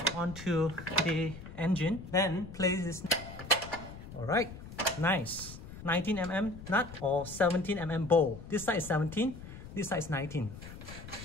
onto the engine. Then place this. All right. Nice. 19mm nut or 17mm bowl. This side is 17, this side is 19.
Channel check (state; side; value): noise; left; rumble, 13 dB below the sound